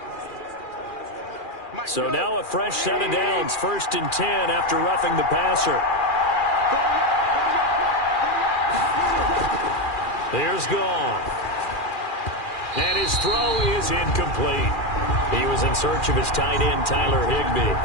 So now a fresh set of downs, 1st and 10 after roughing the passer. Here's Goff. And his throw is incomplete. He was in search of his tight end, Tyler Higbee.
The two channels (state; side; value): late; right; 2.4 ms